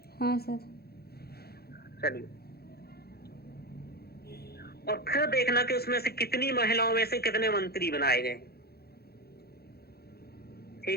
हाँ सर। चलिए, और फिर देखना कि उसमें से कितनी महिलाओं में से कितने मंत्री बनाए गए,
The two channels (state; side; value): late; right; 0.46 ms